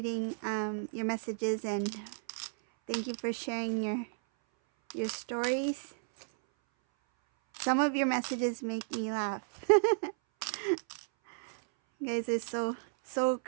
your messages, and thank you for sharing your stories. Some of your messages make me laugh. You guys are so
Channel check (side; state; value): left; silent; 56 dB below the other